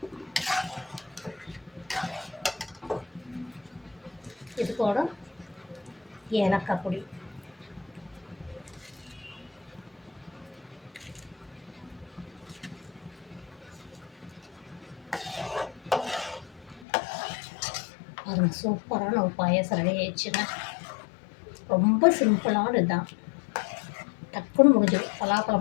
இது கூட ஏலக்காய் பொடி, அது சூப்பரான ஒரு பாயாசம் ரெடி ஆயிடுச்சுங்க. ரொம்ப சிம்பிளான இதுதான், டக்குன்னு முடிஞ்சிடும். பலாப்பழம்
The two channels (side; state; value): right; drops out; at 16.9 s